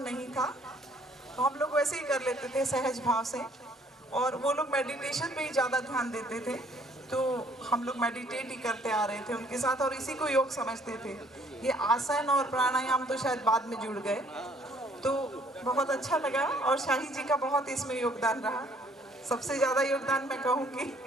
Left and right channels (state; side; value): normal; both; correlation 0.62